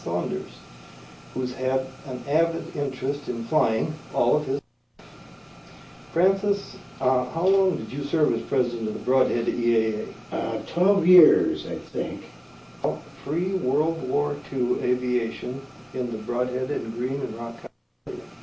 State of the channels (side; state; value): both; identical; correlation 1.00